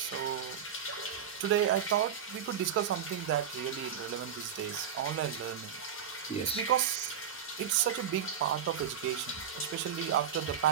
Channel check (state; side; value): quieter; left; 8.3 dB